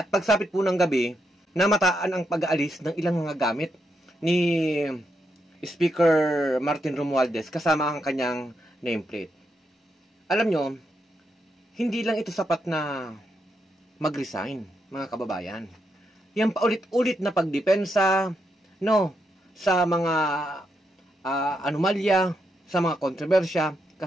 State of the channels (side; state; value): both; normal; correlation 0.82